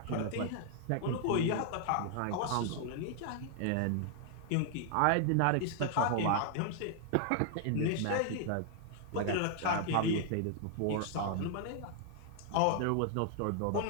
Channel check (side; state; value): both; different; correlation 0.00